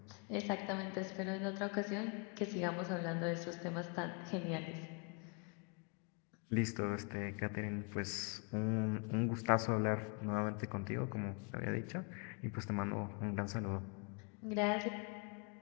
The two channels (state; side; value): quieter; right; 36.4 dB